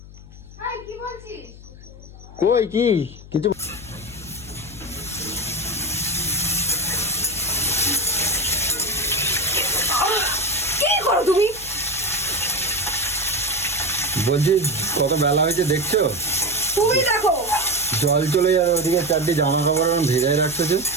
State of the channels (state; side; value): noise; left; hum, 18 dB below the sound